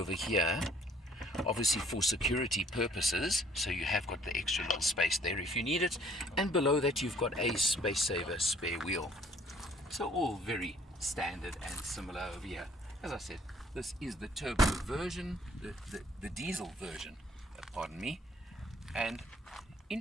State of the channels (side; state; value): both; normal; correlation 0.59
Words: here, obviously for security purposes, so you have got the extra little space there if you need it, and below that you've got a space saver spare wheel. So all very standard and similar over here. As I said, this is the turbo version, the diesel version, pardon me, and